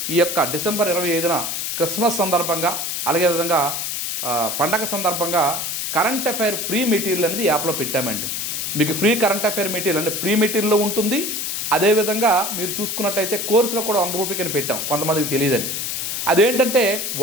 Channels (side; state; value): left; noise; hiss, 3 dB below the sound